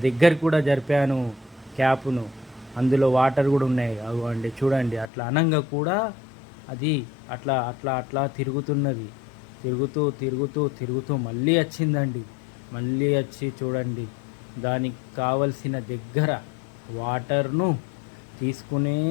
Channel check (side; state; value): right; drops out; at 5.1 s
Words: దగ్గర కూడా జరిపాను క్యాప్ను, అందులో వాటర్ కూడా ఉన్నాయి. అవ్వండి చూడండి, అట్లా అనంగా కూడా అది అట్లా అట్లా అట్లా తిరుగుతున్నది. తిరుగుతూ తిరుగుతూ తిరుగుతూ మళ్ళీ వచ్చిందండి. మళ్ళీ వచ్చి చూడండి, దానికి కావలసిన దగ్గర వాటర్ను తీసుకునే